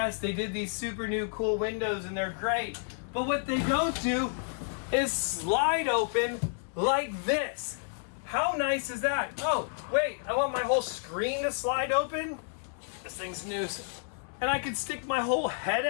they did these super new cool windows and they're great, but what they don't do is slide open like this. How nice is that? Oh, wait, I want my whole screen to slide open? This thing's nuisance. And I could stick my whole head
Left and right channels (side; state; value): right; silent; 56 dB below the other